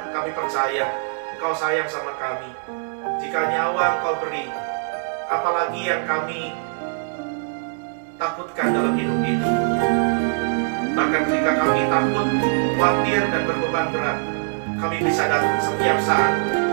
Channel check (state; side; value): silent; left; digital silence